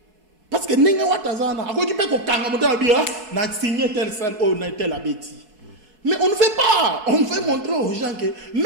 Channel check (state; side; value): late; left; 4.2 ms